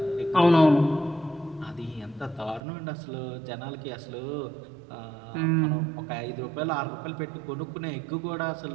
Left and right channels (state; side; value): drops out; left; at 2.6 s